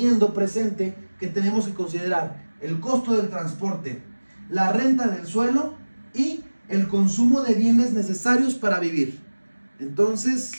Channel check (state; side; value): inverted; both; correlation -1.00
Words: presente que tenemos que considerar el costo del transporte, la renta del suelo y el consumo de bienes necesarios para vivir. Entonces,